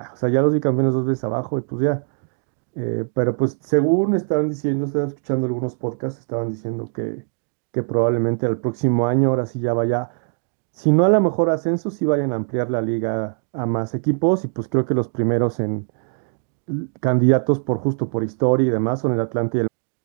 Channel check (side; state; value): left; silent; 57 dB below the other